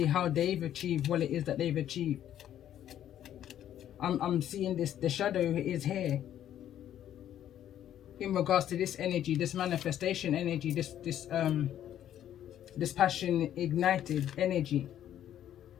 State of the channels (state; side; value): quieter; right; 11.1 dB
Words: how they've achieved what it is that they've achieved. I'm seeing this. The shadow is here. In regards to this energy, this manifestation energy, this passion ignited energy.